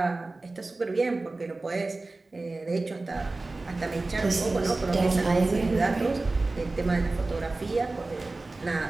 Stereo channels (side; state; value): left; quieter; 3.3 dB